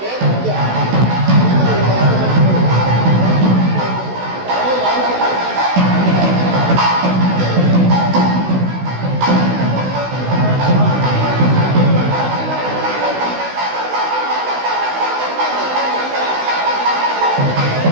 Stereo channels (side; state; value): left; late; 16 ms